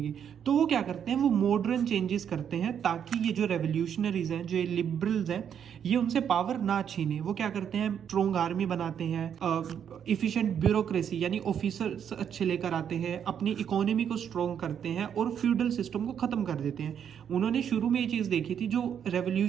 तो वो क्या करते हैं, वो मॉडर्न चेंजेस करते हैं ताकि ये जो रेवोल्यूशनरीज हैं, जो लिबरल्स हैं, ये उनसे पावर ना छीने। वो क्या करते हैं, स्ट्रॉन्ग आर्मी बनाते हैं, इफिशिएंट ब्यूरोक्रेसी यानी ऑफिसर्स अच्छे लेकर आते हैं, अपनी इकोनॉमी को स्ट्रॉन्ग करते हैं और फ्यूडल सिस्टम को खत्म कर देते हैं। उन्होंने शुरू में ये चीज देखी थी, जो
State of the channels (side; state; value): left; quieter; 8.4 dB